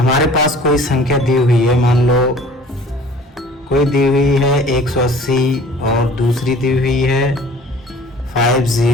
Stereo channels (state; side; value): normal; both; correlation 0.49